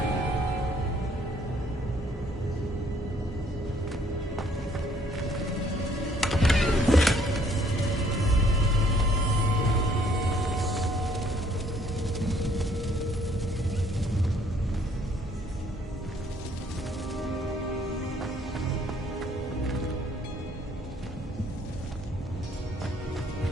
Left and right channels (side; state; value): both; normal; correlation 0.63